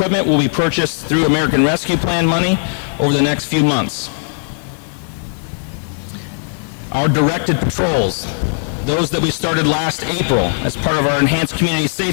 will be purchased through American Rescue Plan money over the next few months. Our directed patrols, those that we started last April as part of our Enhanced Community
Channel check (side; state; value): right; silent; 68 dB below the other